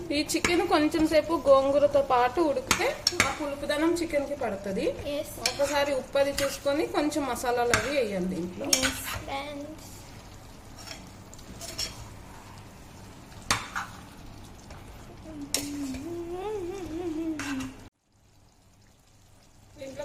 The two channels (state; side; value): identical; both; correlation 1.00